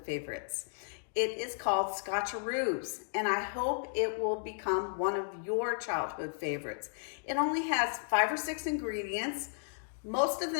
favorites. It is called Scotcharoos, and I hope it will become one of your childhood favorites. It only has 5 or 6 ingredients. Most of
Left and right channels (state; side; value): silent; right; digital silence